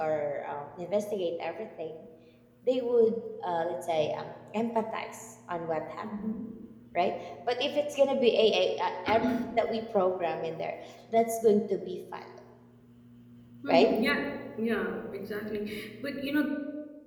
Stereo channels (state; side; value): identical; both; correlation 1.00